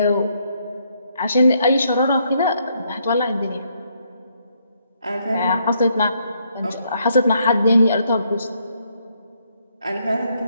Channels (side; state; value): both; inverted; correlation -0.73